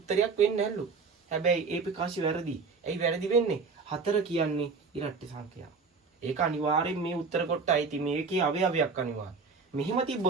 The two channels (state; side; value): quieter; left; 4.7 dB